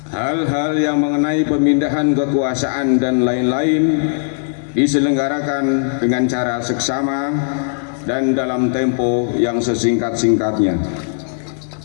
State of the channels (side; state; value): right; silent; digital silence